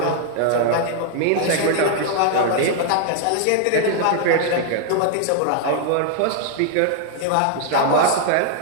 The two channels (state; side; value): different; both; correlation 0.00